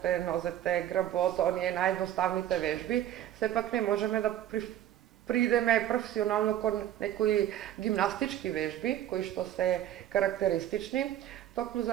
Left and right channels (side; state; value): left; quieter; 11.9 dB